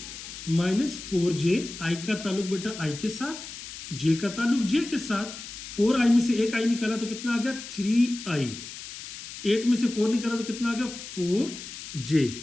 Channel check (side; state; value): left; noise; hiss, 11 dB below the sound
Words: minus 4j। i का ताल्लुक बेटा i के साथ, j का ताल्लुक j के साथ। 4i में से एक i निकाला तो कितना आ गया 3i, 8 में से 4 निकाला तो कितना आ गया 4j।